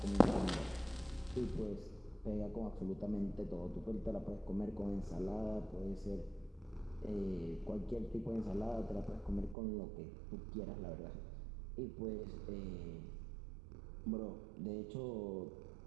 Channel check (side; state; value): left; drops out; at 9.6 s